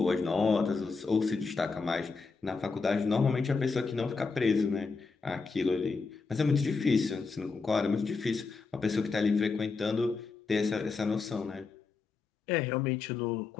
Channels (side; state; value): right; quieter; 4.5 dB